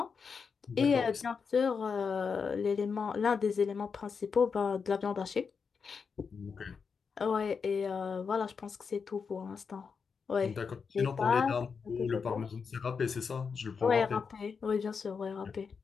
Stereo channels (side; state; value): right; quieter; 5.7 dB